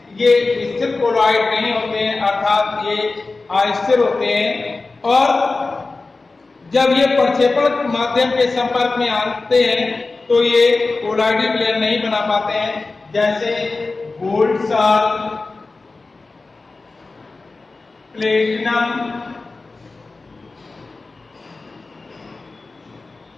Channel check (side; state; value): right; quieter; 3.6 dB